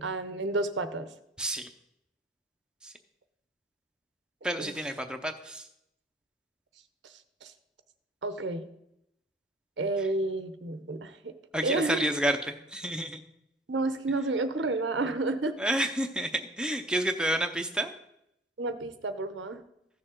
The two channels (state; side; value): normal; both; correlation 0.48